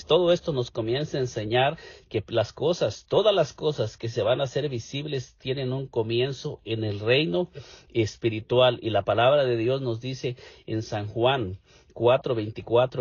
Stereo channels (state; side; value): identical; both; correlation 1.00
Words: todo esto nos comienza a enseñar que las cosas, todas las cosas que se van a hacer visibles tienen un comienzo en el reino espiritual. Y la palabra de Dios nos dice en San Juan